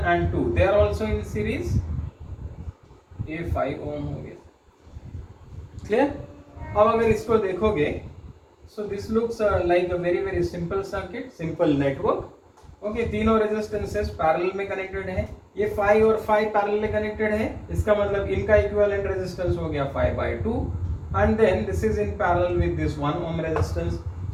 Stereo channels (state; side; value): identical; both; correlation 1.00